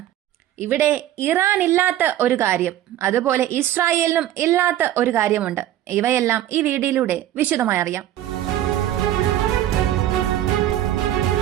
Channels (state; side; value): quieter; left; 12.7 dB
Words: ഇവിടെ ഇറാൻ ഇല്ലാത്ത ഒരു കാര്യം, അതുപോലെ ഇസ്രായേലിനും ഇല്ലാത്ത ഒരു കാര്യമുണ്ട്. ഇവയെല്ലാം ഈ വീഡിയോയിലൂടെ വിശദമായി അറിയാം.